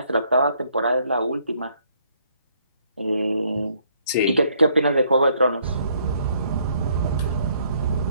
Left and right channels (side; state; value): both; inverted; correlation -0.67